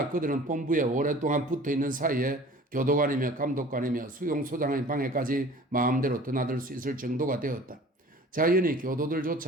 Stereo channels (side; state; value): both; normal; correlation 0.45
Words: 그들은 본부에 오랫동안 붙어있는 사이에 교도관이며 감독관이며 수용소장의 방에까지 마음대로 드나들 수 있을 정도가 되었다. 자연히